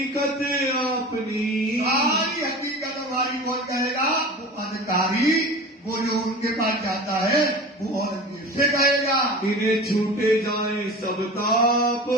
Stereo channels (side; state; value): both; normal; correlation 0.35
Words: अपनी, सारी हकीकत हमारी कौन कहेगा? वो अधिकारी, वो जो उनके पास जाता है वो औरंगजेब से कहेगा। इन्हें छूटे जाए सब ताप,